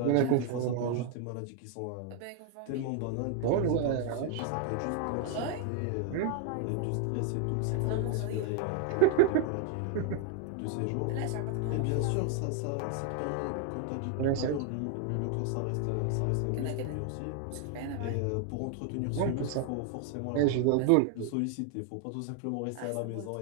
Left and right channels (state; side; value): different; both; correlation 0.00